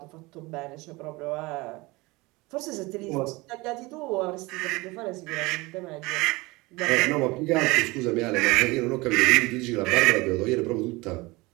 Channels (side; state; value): left; quieter; 23.0 dB